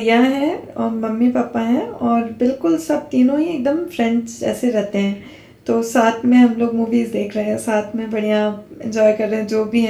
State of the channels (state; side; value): identical; both; correlation 1.00